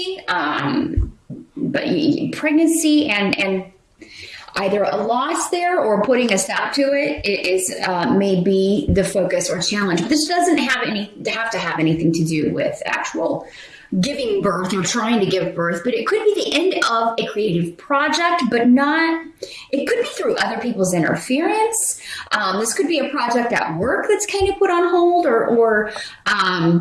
but pregnancy and either a loss there or putting a stop to it is may be the focus or challenge. But this doesn't have to have anything to do with actual giving birth or trying to give birth, but it could be the end of a creative project, but not, it could be through other people's interference. This could be a project at work that's kind of put on hold or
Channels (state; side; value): identical; both; correlation 1.00